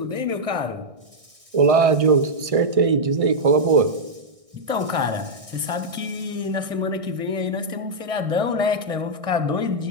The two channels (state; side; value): late; left; 1.6 ms